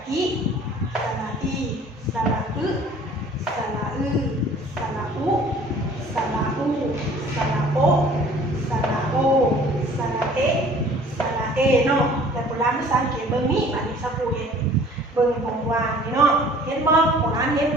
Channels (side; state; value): both; normal; correlation 0.51